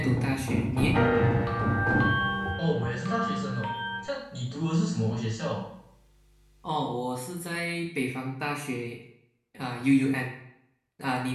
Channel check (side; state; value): both; identical; correlation 1.00